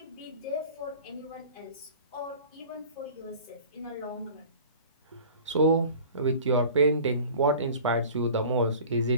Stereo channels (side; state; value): both; inverted; correlation -0.42